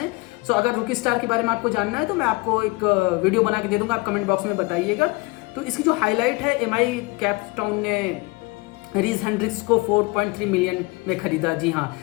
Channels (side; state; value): right; quieter; 25.2 dB